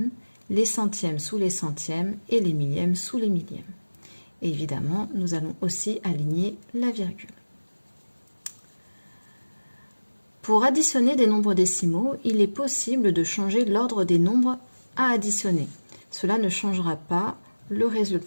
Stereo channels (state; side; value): inverted; both; correlation -1.00